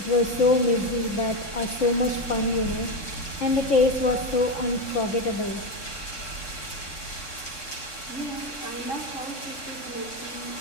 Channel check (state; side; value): late; right; 3.6 ms